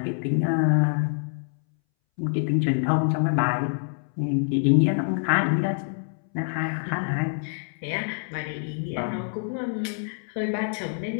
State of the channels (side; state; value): right; silent; 61 dB below the other